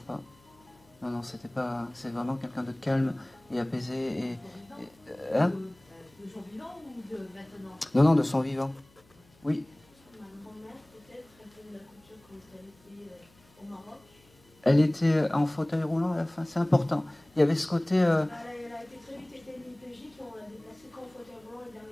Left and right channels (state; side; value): noise; left; hum, 29 dB below the sound